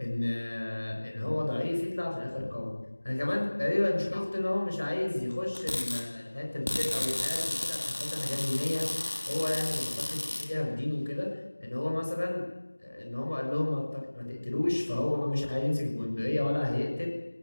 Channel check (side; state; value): both; inverted; correlation -1.00